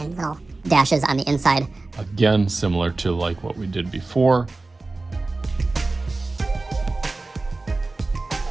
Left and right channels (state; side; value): quieter; left; 3.3 dB